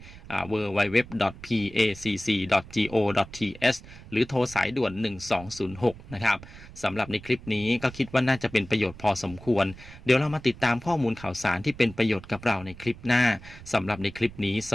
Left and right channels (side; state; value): right; noise; rumble, 17 dB below the sound